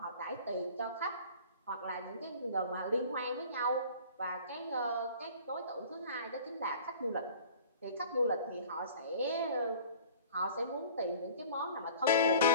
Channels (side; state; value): both; inverted; correlation -0.45